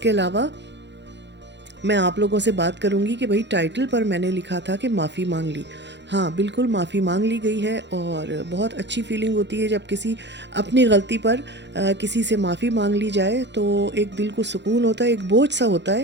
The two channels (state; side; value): late; left; 0.52 ms